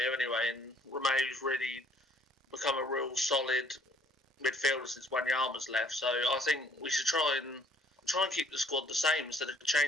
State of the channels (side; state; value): both; normal; correlation 0.61